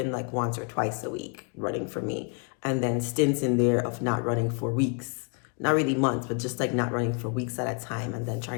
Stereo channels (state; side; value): quieter; right; 37.8 dB